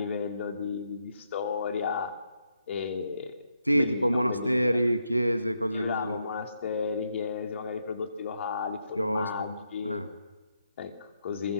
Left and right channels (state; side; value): inverted; both; correlation -0.80